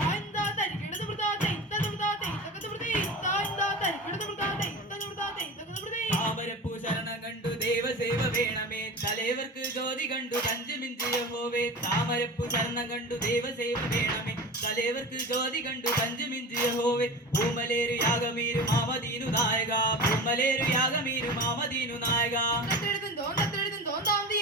താമരപ്പൂ ശരണം കണ്ടു ദേവസേവ വേണമേ തലേവർക്ക് ജ്യോതി കണ്ടു പഞ്ചമിഞ്ചിയ ഹോവേ. താമരപ്പൂ ശരണം കണ്ടു ദേവസേവ വേണമേ തലേവർക്ക് ജ്യോതി കണ്ടു പഞ്ചമിഞ്ചിയ ഹോവേ. പൂമലേരു യാഗമീരു മാമദീനു നായക പൂമലേരു യാഗമീരു മാമദീനു നായക.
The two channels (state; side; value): normal; both; correlation 0.31